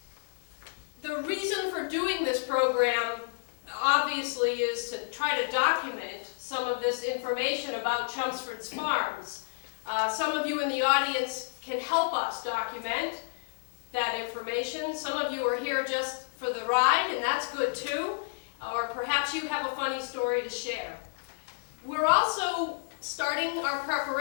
The reason for doing this program, obviously, is to try to document some of this information about Chelmsford's farms. Some of you in the audience can help us document that information. Some of you are here just for the ride, and that's good too. Or perhaps you have a funny story to share. We're also starting our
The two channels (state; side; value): silent; right; 58 dB below the other